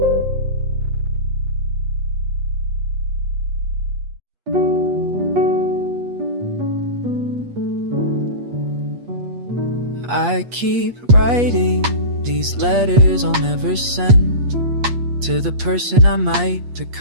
I keep writing these letters I'll never send to the person I might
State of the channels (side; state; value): left; late; 8.4 ms